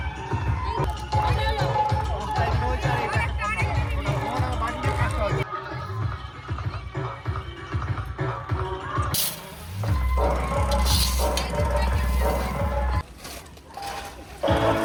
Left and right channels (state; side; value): identical; both; correlation 1.00